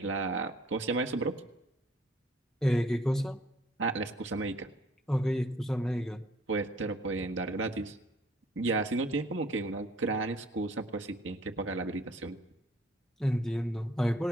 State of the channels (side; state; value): both; normal; correlation 0.58